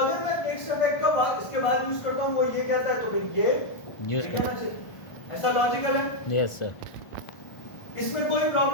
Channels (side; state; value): right; late; 1.4 ms